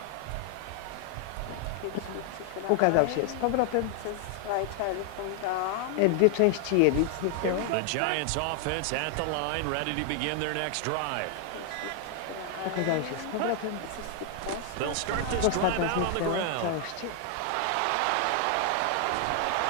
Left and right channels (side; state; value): both; different; correlation 0.00